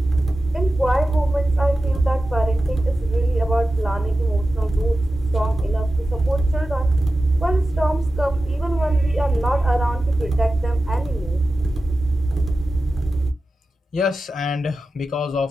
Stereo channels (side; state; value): both; normal; correlation 0.93